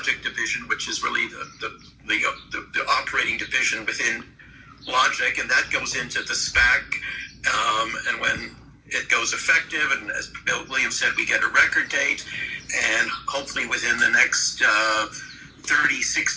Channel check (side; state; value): both; identical; correlation 1.00